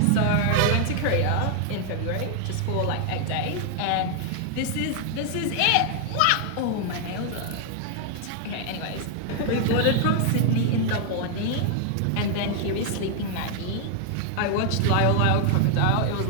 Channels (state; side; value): different; both; correlation 0.00